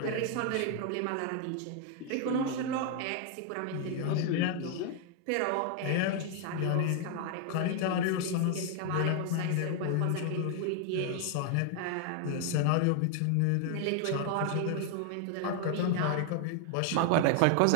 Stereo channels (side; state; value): both; different; correlation 0.00